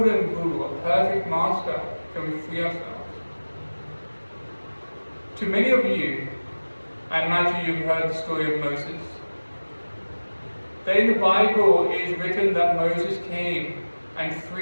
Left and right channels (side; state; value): both; inverted; correlation -1.00